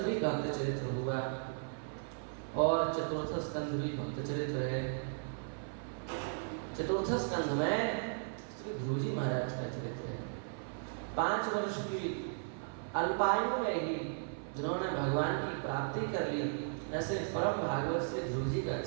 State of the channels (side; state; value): left; silent; 54 dB below the other